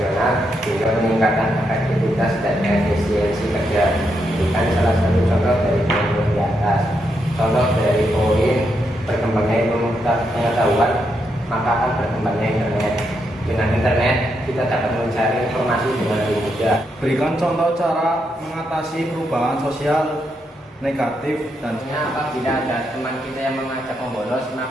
hingga peningkatan efektivitas dan efisiensi kerja. Bukan salah satu contoh dari poin di atas. Contoh dari poin berkembangnya ilmu pengetahuan, maka akan berkembangnya internet. Dengan internet, kita dapat mencari informasi dengan lebih mudah. Berikan contoh cara mengatasi perubahan sosial negatif dan Apabila ada teman kita yang mengajak membolos,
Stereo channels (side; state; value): both; normal; correlation 0.81